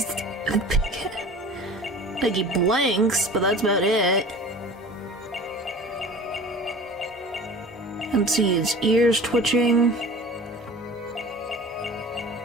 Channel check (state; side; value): normal; both; correlation 0.40